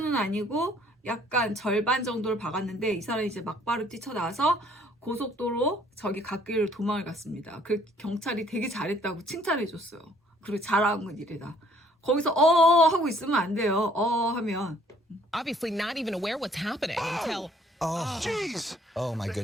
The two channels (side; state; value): both; normal; correlation 0.61